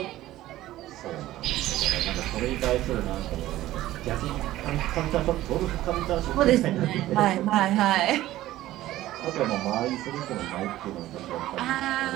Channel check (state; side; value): quieter; left; 15.2 dB